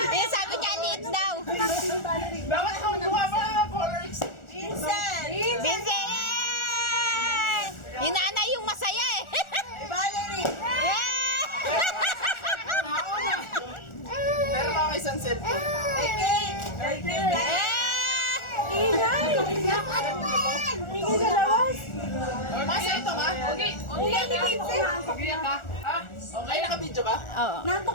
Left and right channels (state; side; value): late; right; 1.4 ms